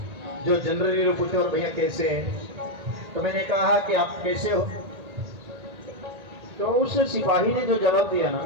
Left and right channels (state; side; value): late; left; 1.8 ms